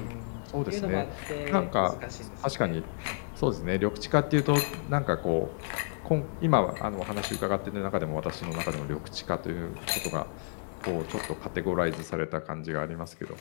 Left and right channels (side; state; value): right; silent; digital silence